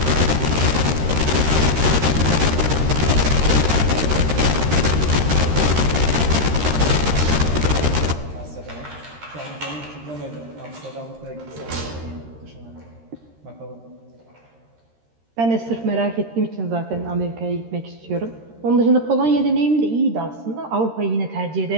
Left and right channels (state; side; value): late; left; 13 ms